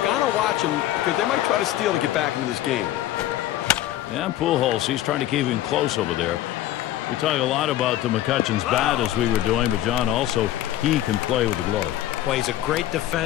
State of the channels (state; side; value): quieter; right; 13.5 dB